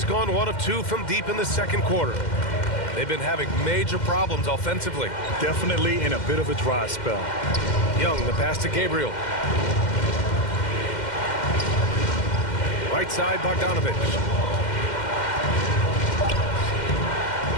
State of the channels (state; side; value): late; right; 2.1 ms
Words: gone 1 of 2 from deep in the second quarter. They've been having major problems offensively. Definitely in a bit of a dry spell. Young, the pass to Gabriel. Right side, Bogdanovich.